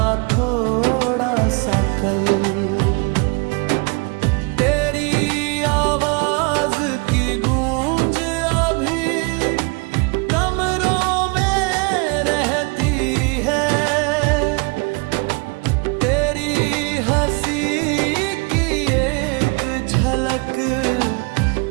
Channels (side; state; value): left; quieter; 31.3 dB